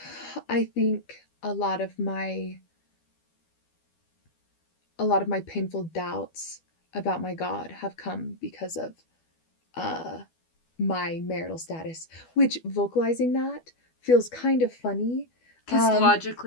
I think a lot of my painful doubts about my God have come because of my marital status, which vocalizing that feels kind of funny. Because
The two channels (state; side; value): late; right; 12 ms